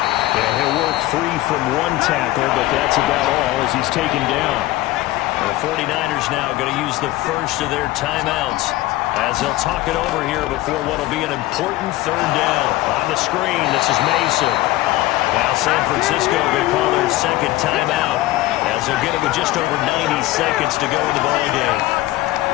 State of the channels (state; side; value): quieter; right; 17.1 dB